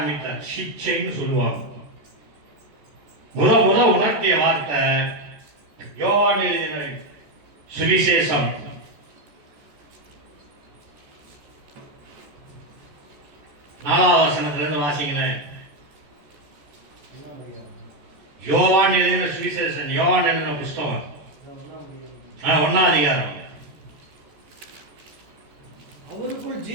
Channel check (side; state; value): left; late; 14 ms